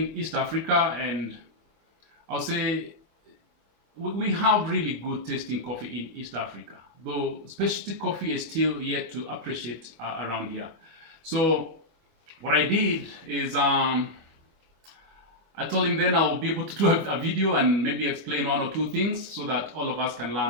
East Africa and I'll say we have really good tasting coffee in East Africa, though specialty coffee is still yet to appreciate around here. So what I did is I told him then I'll be able to do a video and maybe explain one or two things so that all of us can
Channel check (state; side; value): late; left; 25 ms